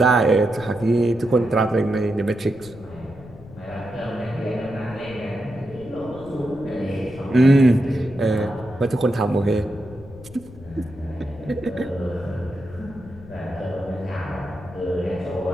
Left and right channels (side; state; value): left; noise; rumble, 18 dB below the sound